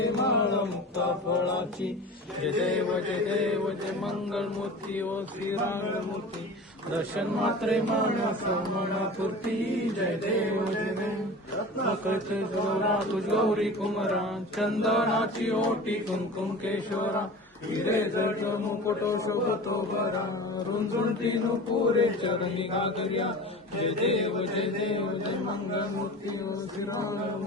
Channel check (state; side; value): normal; both; correlation 0.35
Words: माळ मुक्ता फळाची जय देव जय मंगल मूर्ती ओ श्रीराममूर्ती दर्शन मात्रे मानस मनपूर्ती जय देव रत्नाकळचे जोरा तुझ गौरी कुमरा चंदनाची ओटी कुंकुम केशोरा हिरे जड मुकुटो शोभतो बरा रुंजुंटी नुपुरे चरणी गागर्या जय देव जय मंगल मूर्ती ओ